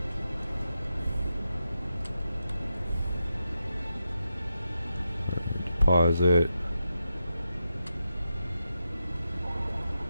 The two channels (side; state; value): both; inverted; correlation -0.87